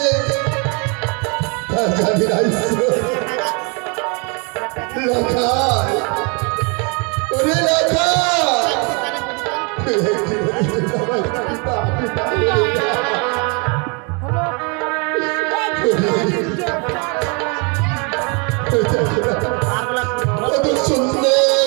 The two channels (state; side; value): quieter; left; 33.4 dB